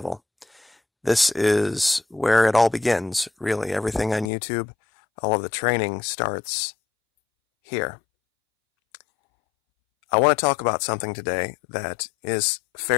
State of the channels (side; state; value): right; drops out; at 4.3 s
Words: This is where it all begins, really. Everything on YouTube, all of the training starts here. I want to talk about something today that is